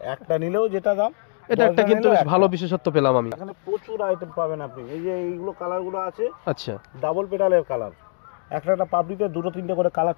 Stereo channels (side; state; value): right; silent; digital silence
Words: একটা নিলেও যেটা দাম। এটা একটা কিন্তু ভালো বিশেষত্ব পেলাম আমি। এখানে প্রচুর আইটেম পাবেন আপনি। এই যে এইগুলো কালারগুলো আছে, আচ্ছা, ডাবল পেটালের কালার, একটা পাপড়িতে 2-3টে করে কালার